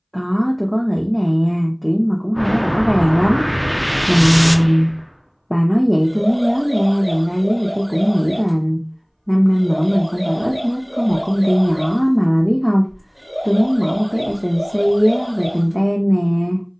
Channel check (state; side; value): identical; both; correlation 1.00